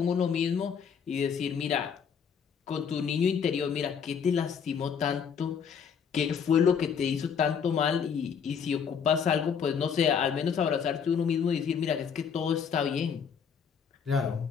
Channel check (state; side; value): quieter; right; 6.9 dB